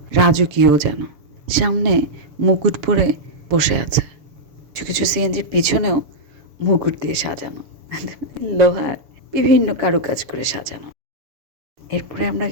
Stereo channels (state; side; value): late; left; 7.0 ms